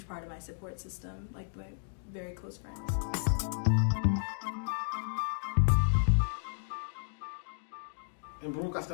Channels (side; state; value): right; silent; digital silence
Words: part of my support system, like my very close friends. In Baruch, I